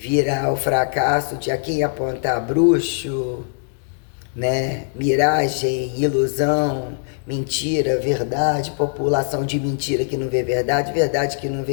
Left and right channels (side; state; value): right; silent; digital silence